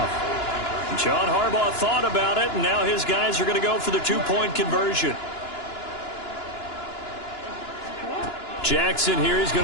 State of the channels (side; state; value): right; late; 2.9 ms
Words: John Harbaugh thought about it, and now his guys are going to go for the two-point conversion. Jackson here is